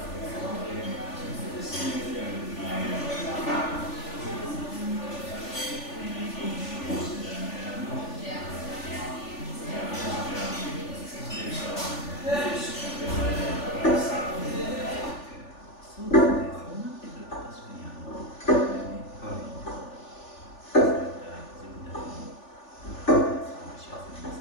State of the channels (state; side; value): late; right; 3.4 ms